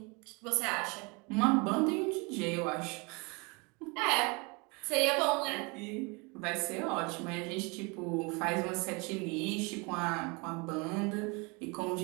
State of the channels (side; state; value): left; quieter; 29.2 dB